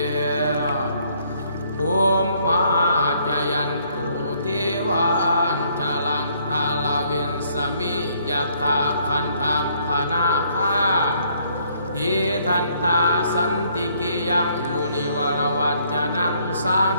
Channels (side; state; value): both; inverted; correlation -0.66